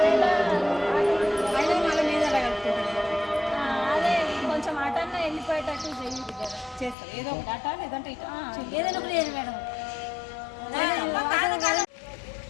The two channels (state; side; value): drops out; right; at 7.0 s